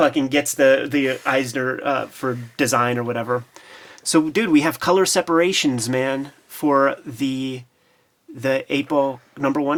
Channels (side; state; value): both; identical; correlation 1.00